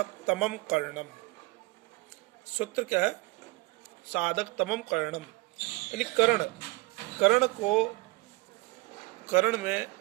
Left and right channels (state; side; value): quieter; left; 23.9 dB